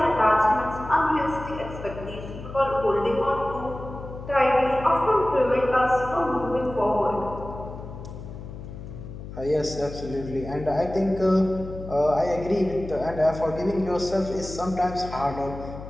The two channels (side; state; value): left; noise; hum, 11 dB below the sound